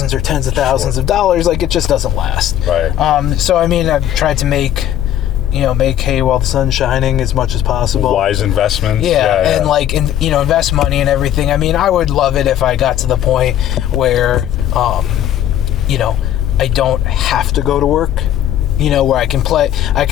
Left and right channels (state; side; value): quieter; right; 11.5 dB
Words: or tens of thousands of dollars. Like, it just doesn't last. Right. So I mean, I've tried to make hay while the sun's shining as much as possible. Wise investments. Yeah. And like, invest money and everything. I mean, I would love it if I got to the point where, I don't have to go to work, where I can play